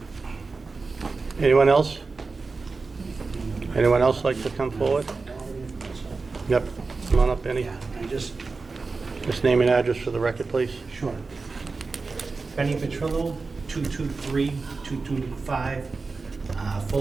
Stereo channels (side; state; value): left; quieter; 4.1 dB